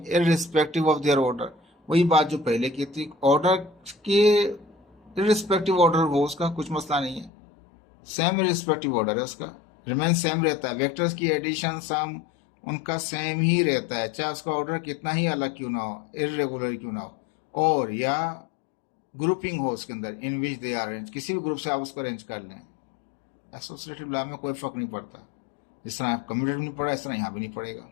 irrespective of their order. वही बात जो पहले की थी, ऑर्डर के इररिस्पेक्टिव ऑर्डर हो उसका कुछ मसला नहीं है, सेम इररिस्पेक्टिव ऑर्डर है उसका, रिमेन सेम रहता है। वेक्टर्स की एडिशन सम उनका सेम ही रहता है, चाहे उसका ऑर्डर कितना ही अलग क्यों ना हो, इरेगुलर क्यों ना हो, और या ग्रुपिंग हो उसके अंदर, इन विच दे आर अरेंज, किसी भी ग्रुप से आप उसको अरेंज कर लें। एसोसिएटिव लॉ में कोई फर्क नहीं पड़ता, जिस तरह कम्यूटेटिव नहीं पड़ा इस तरह यहाँ भी नहीं पड़ेगा।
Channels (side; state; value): right; drops out; at 7.3 s